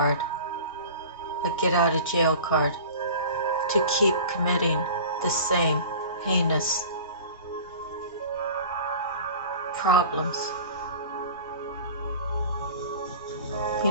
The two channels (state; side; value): inverted; both; correlation -0.39